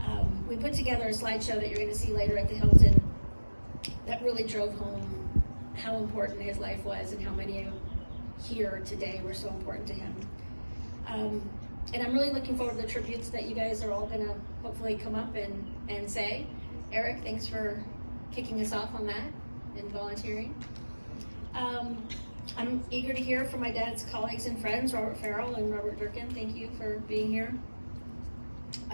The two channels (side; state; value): both; inverted; correlation -1.00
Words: We put together a slideshow that you're going to see later at the Hilton that really drove home how important his life was and how many here today were so important to him. And I'm really looking forward to the tributes that you guys are all going to hopefully come up and say. Eric, thanks for kicking us off on that and volunteering. I'm eager to hear from my dad's colleagues and friends, Robert Farrell and Robert Durkin. Thank you for being here.